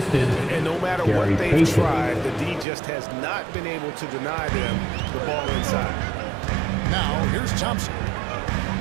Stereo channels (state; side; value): drops out; left; at 2.7 s